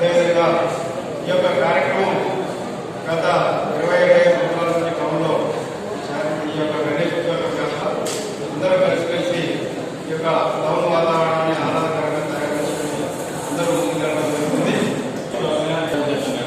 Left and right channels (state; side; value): identical; both; correlation 1.00